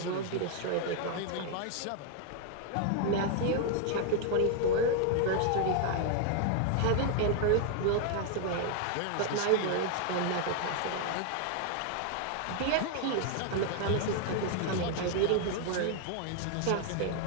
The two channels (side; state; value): both; different; correlation 0.00